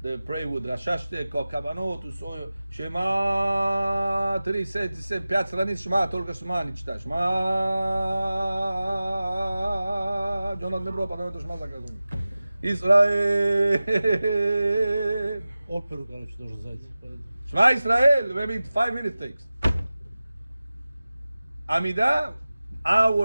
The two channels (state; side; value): inverted; both; correlation -0.96